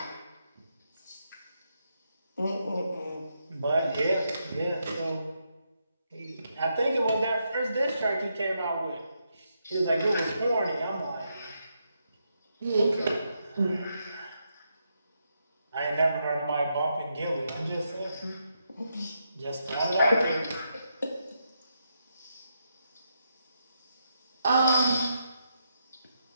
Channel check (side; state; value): both; inverted; correlation -0.81